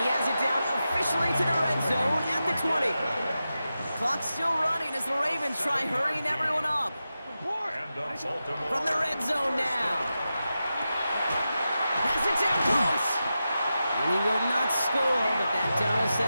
has it down officially to the red zone at the 20. Clock's still running as the Ravens try hurrying everyone up. From the red zone now. Has it down close. And he will not score, but that does set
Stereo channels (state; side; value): inverted; both; correlation -0.91